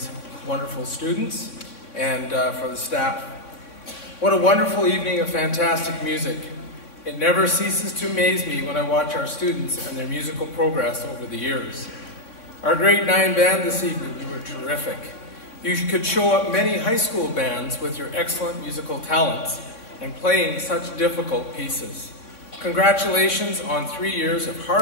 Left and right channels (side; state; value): right; late; 3.6 ms